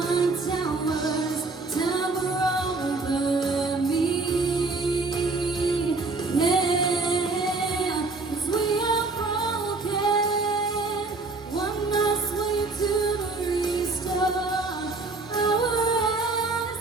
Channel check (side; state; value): left; quieter; 3.6 dB